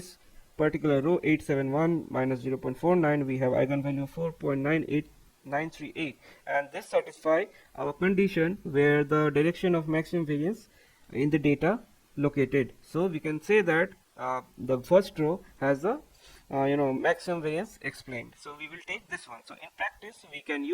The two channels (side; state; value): both; identical; correlation 1.00